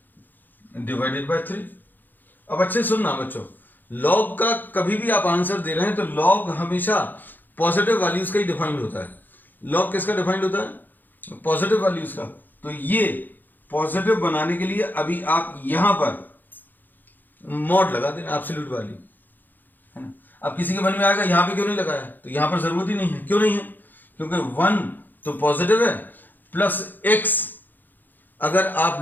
डिवाइडेड बाय 3। अब अच्छे सुनना बच्चों, log का कभी भी आप आंसर दे रहे हैं तो log हमेशा पॉजिटिव वैल्यूज का ही डिफाइंड होता है। log किसका डिफाइंड होता है, पॉजिटिव वैल्यूज का। तो ये पॉजिटिव बनाने के लिए अभी आप यहां पर मॉड लगा देना, एब्सोल्यूट वैल्यू है ना। अब किसी के मन में आएगा यहां पे क्यों नहीं लगाया, तो यहां पर जरूरत ही नहीं है। क्यों नहीं है, क्योंकि 1 तो पॉजिटिव है, प्लस x अगर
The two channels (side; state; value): right; late; 0.088 ms